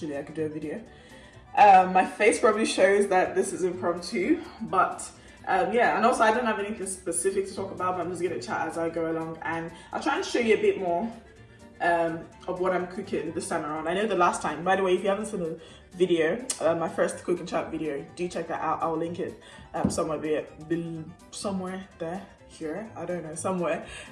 I could do a video. My face probably shows that this is impromptu, but yeah, and also I don't have anything specific to talk about, but I'm just gonna chat as I go along, and I'll try and show you a bit more of what I'm cooking this time around. I know the last time, by the way, if you haven't seen the video, my first cook and chat video, do check that out. I'll link it somewhere there, here, I don't know, somewhere,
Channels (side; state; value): both; identical; correlation 1.00